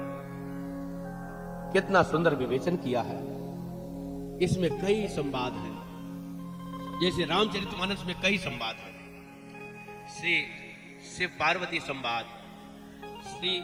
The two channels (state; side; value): identical; both; correlation 1.00